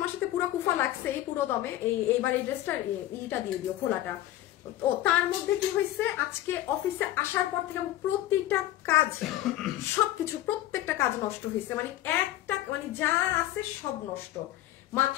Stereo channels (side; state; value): right; quieter; 14.4 dB